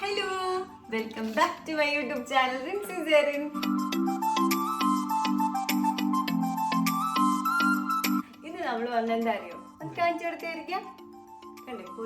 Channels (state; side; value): identical; both; correlation 1.00